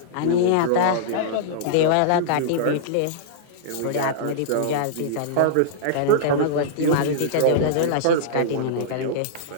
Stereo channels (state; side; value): different; both; correlation -0.02